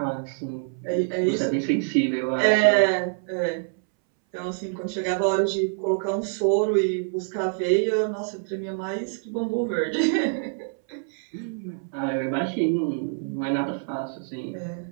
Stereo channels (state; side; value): silent; left; 61 dB below the other